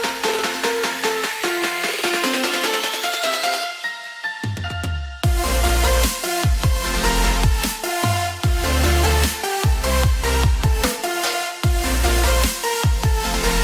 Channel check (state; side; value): identical; both; correlation 1.00